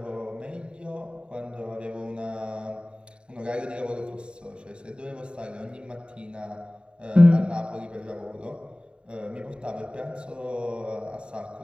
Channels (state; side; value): late; left; 0.053 ms